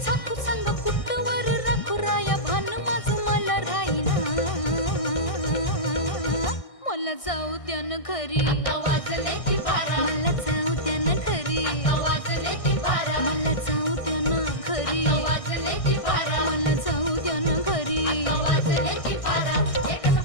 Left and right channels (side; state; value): right; late; 1.6 ms